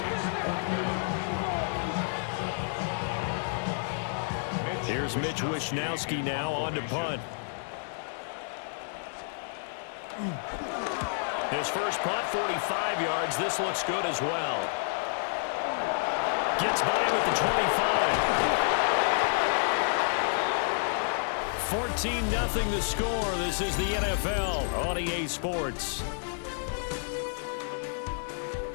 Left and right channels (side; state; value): right; silent; digital silence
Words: Here's Mitch Wishnowski now on to punt. His first punt, 45 yards. This looks good as well. Gets by him at the 25. 14-0 the score. This is the NFL on EA Sports.